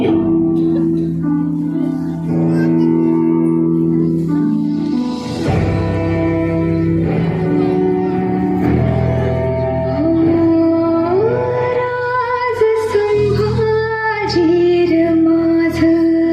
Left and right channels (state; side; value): identical; both; correlation 1.00